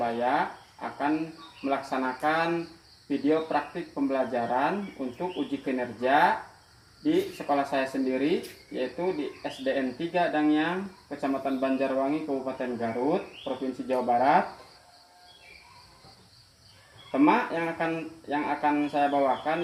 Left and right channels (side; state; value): both; identical; correlation 1.00